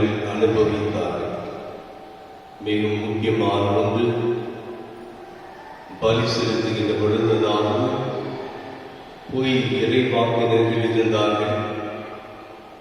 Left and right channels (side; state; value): both; identical; correlation 1.00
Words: அனுபவித்தார்கள். மிகவும் முக்கியமான ஒன்று, பலி செலுத்துகின்ற பொழுதுதான் பொய் இறைவாக்கினர்கள் இருந்தார்கள்.